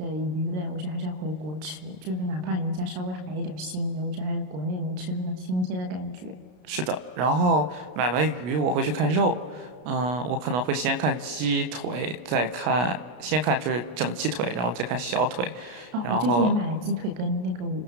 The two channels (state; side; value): late; left; 32 ms